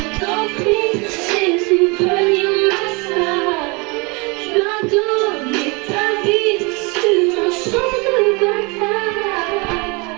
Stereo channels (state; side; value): quieter; left; 28.7 dB